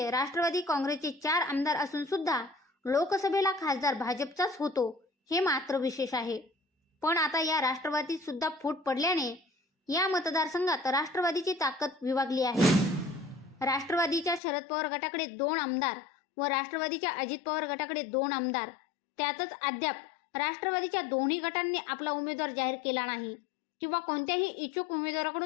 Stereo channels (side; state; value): right; drops out; at 14.4 s